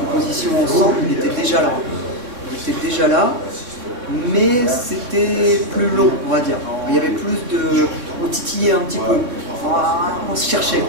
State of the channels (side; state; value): left; late; 3.7 ms